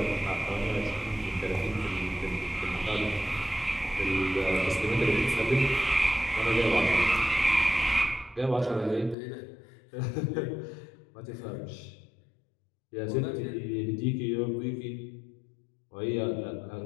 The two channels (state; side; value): drops out; right; at 9.2 s